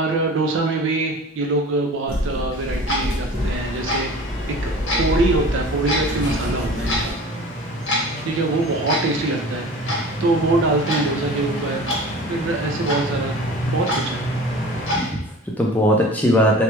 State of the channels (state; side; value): normal; both; correlation 0.40